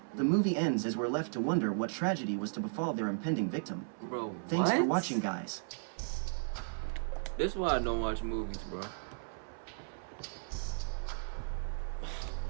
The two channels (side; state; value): left; silent; 54 dB below the other